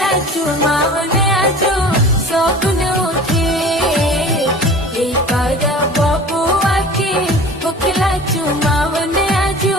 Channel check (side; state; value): both; normal; correlation 0.41